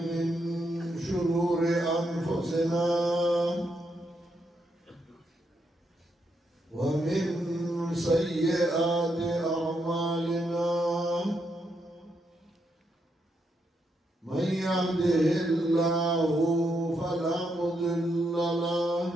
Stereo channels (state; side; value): normal; both; correlation 0.80